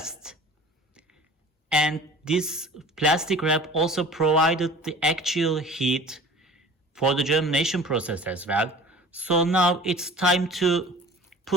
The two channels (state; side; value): normal; both; correlation 0.44